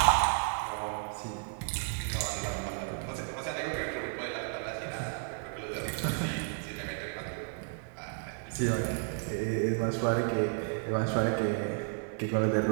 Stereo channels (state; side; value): silent; left; 56 dB below the other